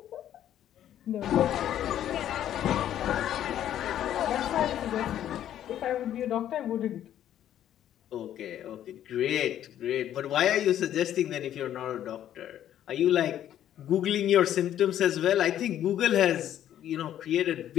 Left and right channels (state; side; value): quieter; right; 11.2 dB